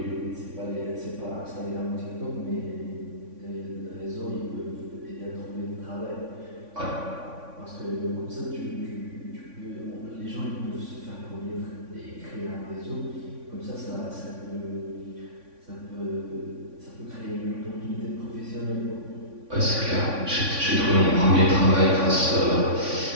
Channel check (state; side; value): late; left; 3.5 ms